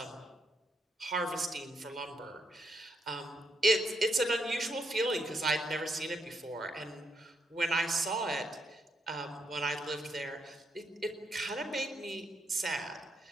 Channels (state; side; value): normal; both; correlation 0.78